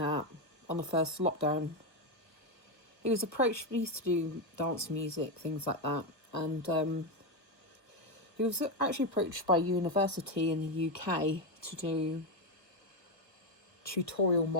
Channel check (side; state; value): right; late; 1.3 ms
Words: on the first lockdown. He used to do dance music, things like that, and he was actually approached by a university in the UK to do tutorial